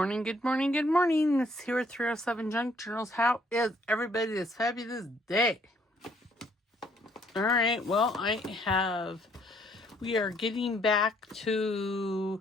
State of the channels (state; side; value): normal; both; correlation 0.66